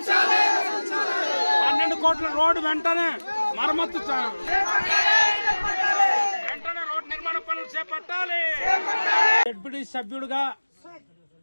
12 కోట్ల రోడ్డు వెంటనే మరమ్మతు వెంటనే రోడ్డు నిర్మాణ పనులు చేపట్టాలి. డిప్యూటీ సభ్యుడిగా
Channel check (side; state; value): both; inverted; correlation -1.00